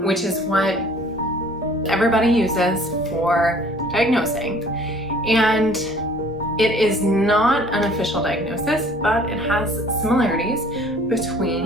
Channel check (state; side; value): normal; both; correlation 0.53